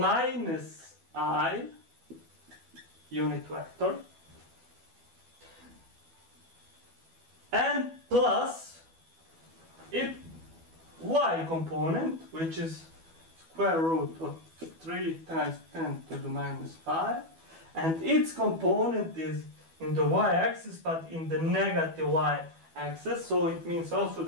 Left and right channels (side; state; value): left; late; 12 ms